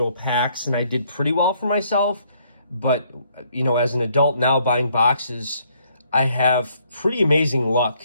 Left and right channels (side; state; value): both; inverted; correlation -0.67